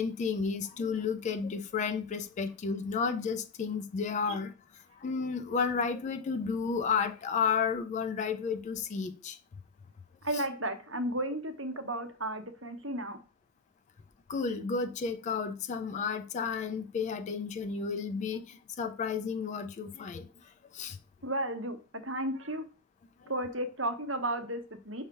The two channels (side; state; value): right; quieter; 3.7 dB